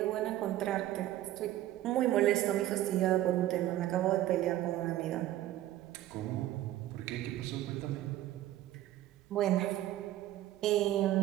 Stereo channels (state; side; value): quieter; left; 14.0 dB